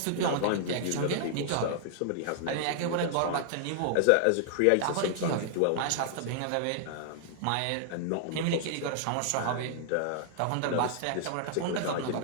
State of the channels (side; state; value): both; different; correlation -0.01